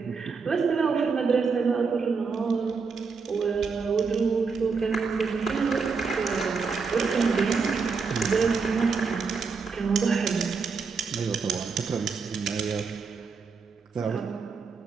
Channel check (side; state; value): left; quieter; 5.1 dB